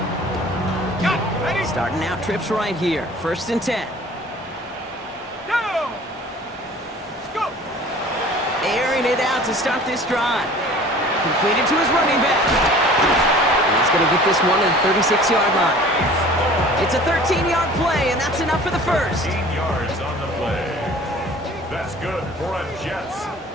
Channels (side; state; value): both; normal; correlation 0.46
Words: line. Starting out trips right here. First and 10. Airing it out to start this drive. Completed to his running back. And he's going to get this one to the 36-yard line. It's a 13-yard play, and that's enough for the first. 13 yards on the play. That's good for a Jets